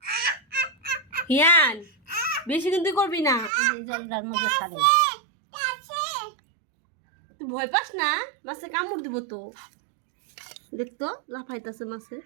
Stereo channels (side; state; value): left; drops out; at 3.5 s